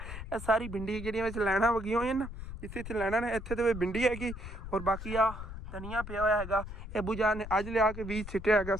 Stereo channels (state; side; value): noise; left; rumble, 9 dB below the sound